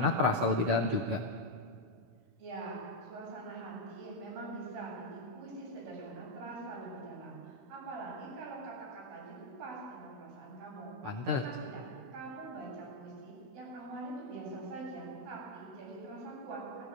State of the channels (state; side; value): late; left; 16 ms